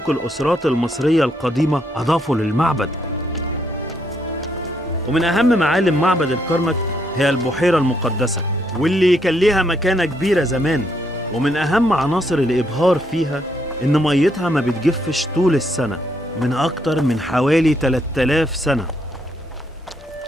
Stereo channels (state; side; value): normal; both; correlation 0.74